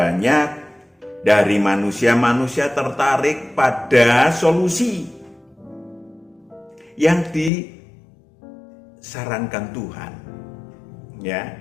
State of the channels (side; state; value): right; drops out; at 7.5 s